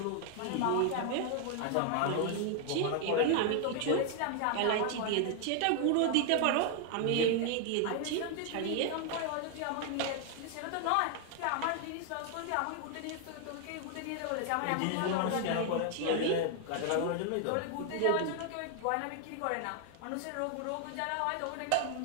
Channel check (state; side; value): different; both; correlation 0.00